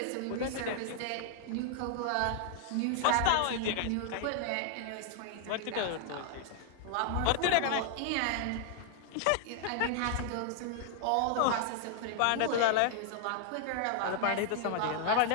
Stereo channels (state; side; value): different; both; correlation 0.00